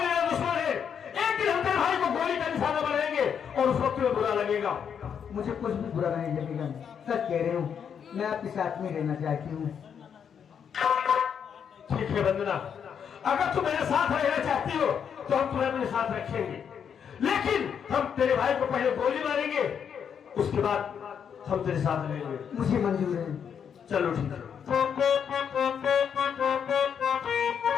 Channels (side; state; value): right; quieter; 7.6 dB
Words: मेरा दुश्मन है। एक दिन हम तेरे भाई को गोली का निशाना बनाएंगे और उस वक्त तुम्हें बुरा लगेगा। मुझे कुछ भी बुरा नहीं लगेगा, सच कह रही हूँ। मैं आपके साथ में रहना चाहती हूँ। ठीक है वंदना, अगर तुम मेरे साथ रहना चाहती हो तो हम तुम्हें अपने साथ रखेंगे, लेकिन हम तेरे भाई को पहले गोली मारेंगे, उसके बाद हम तेरे साथ रहेंगे। मुझे मंजूर है। चलो ठीक है।